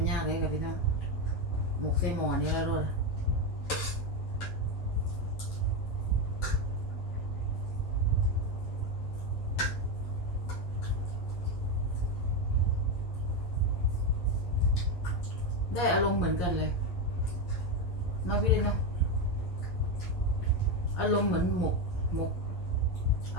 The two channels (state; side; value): late; right; 11 ms